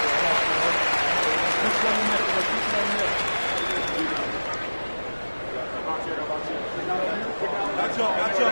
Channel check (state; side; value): inverted; both; correlation -1.00